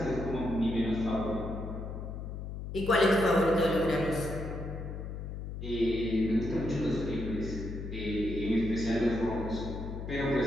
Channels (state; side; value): noise; left; hum, 7 dB below the sound